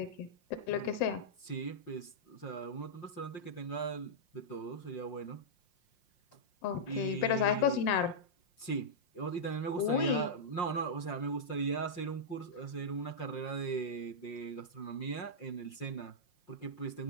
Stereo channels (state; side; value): late; right; 5.6 ms